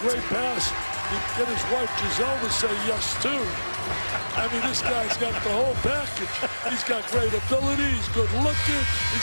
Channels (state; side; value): inverted; both; correlation -1.00